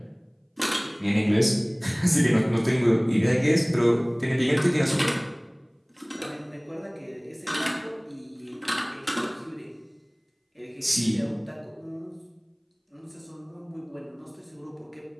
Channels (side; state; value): both; identical; correlation 1.00